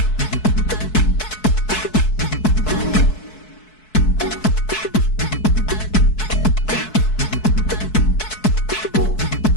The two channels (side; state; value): right; late; 4.6 ms